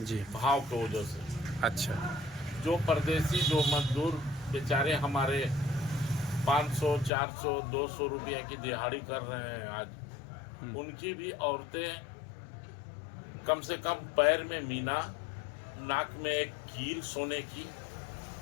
जी। भाव की वजह से। अच्छा। जो परदेसी, जो मजदूर बेचारे हमारे 500, 400, 200 रुपये की दिहाड़ी कर रहे हैं आज, हुँ, उनकी भी औरतें कम से कम पैर में मीना, नाक में एक कील सोने की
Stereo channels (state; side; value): drops out; right; at 7.1 s